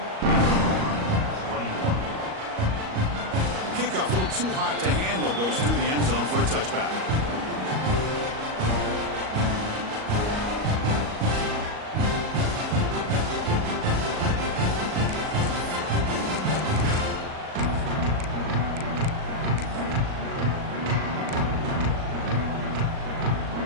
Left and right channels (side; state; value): left; late; 38 ms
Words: Kickoff, a little too hot to handle, goes through the end zone for a touchback.